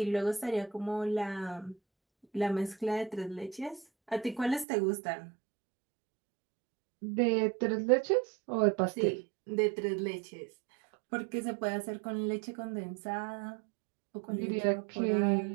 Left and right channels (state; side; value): drops out; left; at 4.7 s